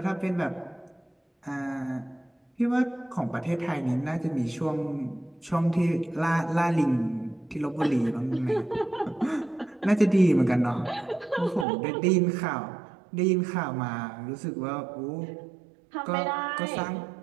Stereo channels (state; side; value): drops out; left; at 11.7 s